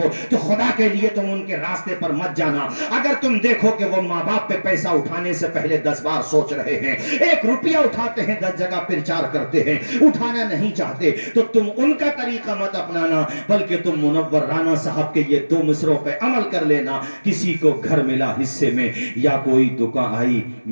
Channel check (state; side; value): inverted; both; correlation -1.00